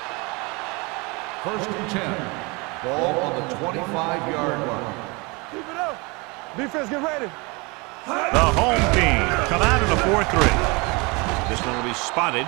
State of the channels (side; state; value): left; quieter; 27.5 dB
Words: First and 10. Ball on the 25-yard line. Keep it up. Defense, get ready. The home team come out in a 4-3. This one will be spotted